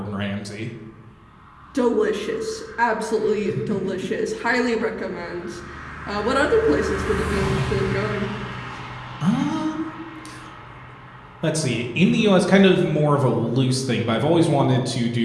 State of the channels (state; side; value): identical; both; correlation 1.00